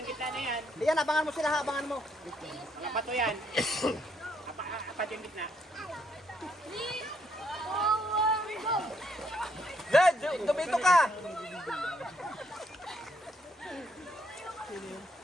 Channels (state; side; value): normal; both; correlation 0.72